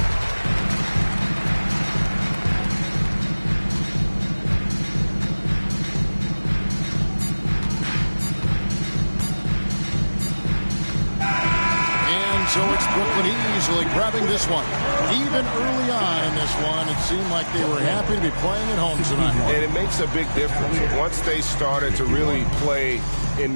So it's Brooklyn easily grabbing this one. Even early on in this one, it seemed like they were happy to be playing at home tonight. And it makes a big difference. Once they started to really play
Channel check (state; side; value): inverted; both; correlation -1.00